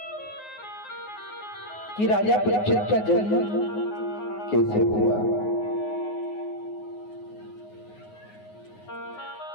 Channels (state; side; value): late; right; 9.5 ms